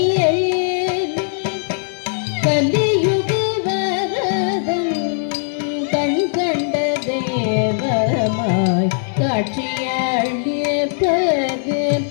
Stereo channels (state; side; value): silent; right; digital silence